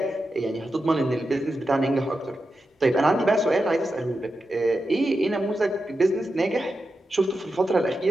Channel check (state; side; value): normal; both; correlation 0.89